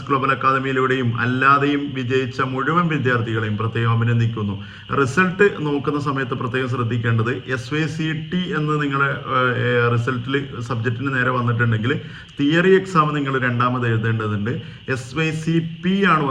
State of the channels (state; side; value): identical; both; correlation 1.00